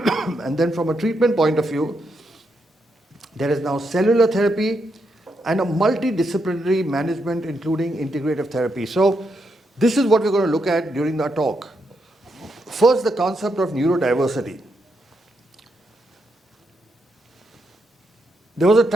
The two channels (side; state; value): both; normal; correlation 0.81